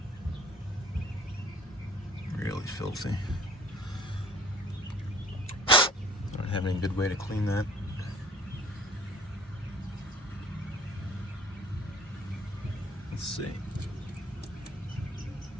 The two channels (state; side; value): normal; both; correlation 0.53